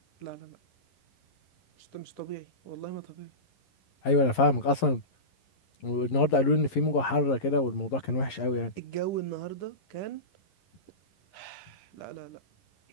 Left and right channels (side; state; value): right; late; 11 ms